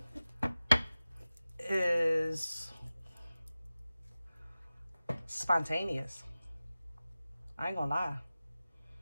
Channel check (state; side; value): inverted; both; correlation -0.96